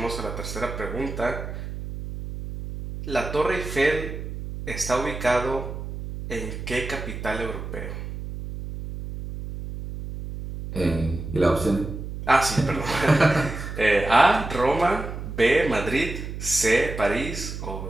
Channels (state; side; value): noise; right; hum, 8 dB below the sound